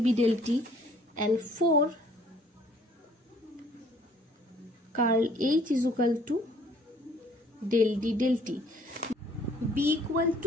B del T, and 4 curl H is equal to del D del T. B equal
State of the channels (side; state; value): both; normal; correlation 0.59